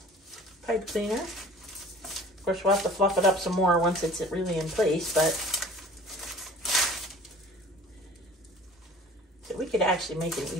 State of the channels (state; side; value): normal; both; correlation 0.46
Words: pipe cleaner. Of course, we'll have to fluff it up some more once it's really in place, but so we could actually make an